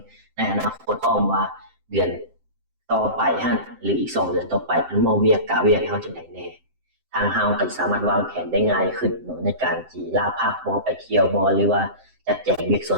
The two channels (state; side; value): late; left; 7.7 ms